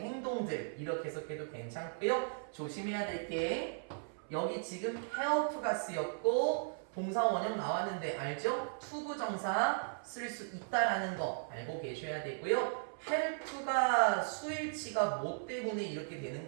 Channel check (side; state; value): left; silent; 53 dB below the other